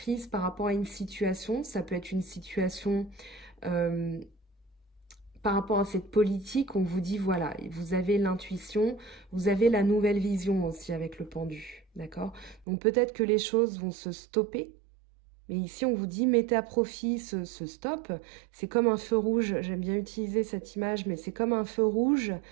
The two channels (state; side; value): drops out; left; at 12.7 s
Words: par rapport à une situation. Ça peut être une situation... par rapport à cette politique, on vous dit, voilà, vous avez l'intuition, vous avez la nouvelle vision aussi avec le pendu, d'accord? Donc peut-être que les choses vont se stopper, mais ici on vous dit, mettez à profit ce stop. C'est comme un feu rouge, j'aime bien utiliser cette image, mais c'est comme un feu rouge.